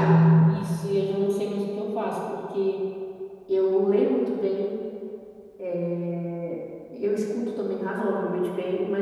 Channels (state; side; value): identical; both; correlation 1.00